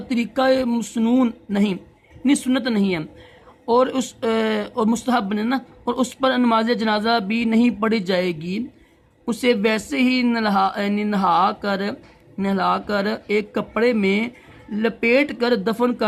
مسنون نہیں، یعنی سنت نہیں ہے، اور مستحب نہیں نا، اور اس پر نماز جنازہ بھی نہیں پڑھی جائے گی۔ اسے ویسے ہی نہلا کر ایک کپڑے میں لپیٹ کر دفن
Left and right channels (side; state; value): both; identical; correlation 1.00